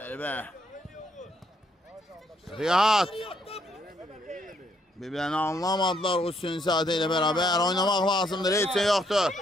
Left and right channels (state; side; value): normal; both; correlation 0.72